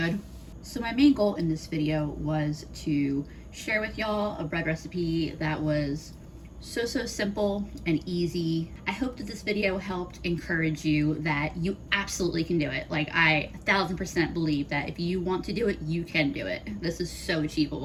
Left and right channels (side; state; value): both; identical; correlation 1.00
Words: So my main goal in this video was to share with y'all a bread recipe that was so simple and easy. I hope that this video helped encourage you that you absolutely can do it. Like, I 1000% believe that if you want to do it, you can do it. This is so